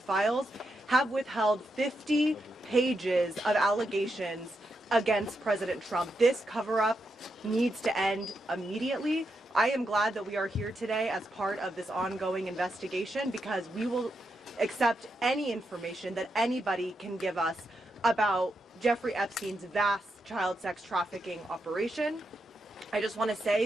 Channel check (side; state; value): both; normal; correlation 0.84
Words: have withheld 50 pages of allegations against President Trump. This cover-up needs to end immediately. I am glad that we are here today as part of this ongoing investigation, because we will accept any information that anybody can give us about Jeffrey Epstein's vast child sex trafficking operation. I just want to